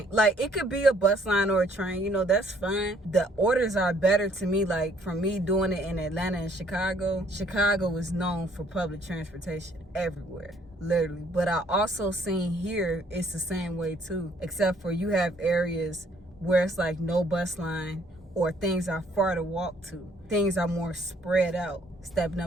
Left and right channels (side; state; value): both; normal; correlation 0.63